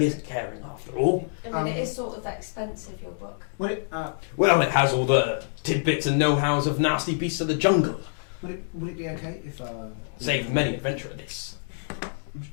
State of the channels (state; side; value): silent; right; digital silence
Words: isn't caring after all. I mean, it is sort of expensive, your book. Would it Well, it has all the tidbits and know-hows of nasty beasts of the jungle. would it be okay if Saved many adventurer this.